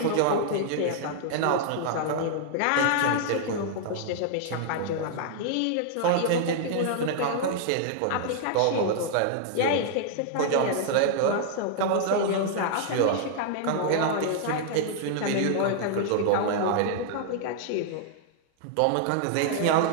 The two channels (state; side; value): different; both; correlation -0.01